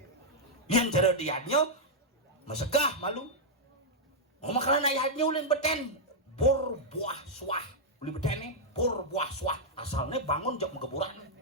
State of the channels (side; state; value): both; normal; correlation -0.05